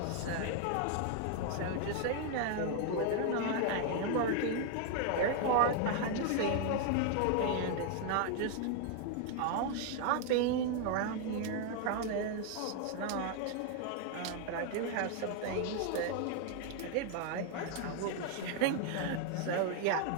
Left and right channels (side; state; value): both; different; correlation 0.00